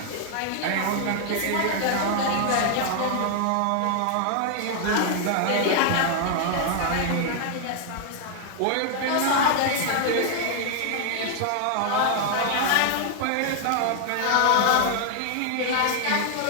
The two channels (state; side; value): different; both; correlation 0.00